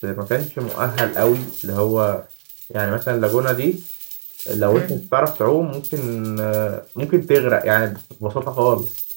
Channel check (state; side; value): quieter; left; 37.8 dB